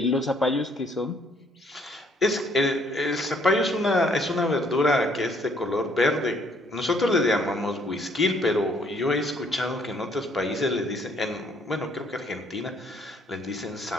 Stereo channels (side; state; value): both; normal; correlation 0.65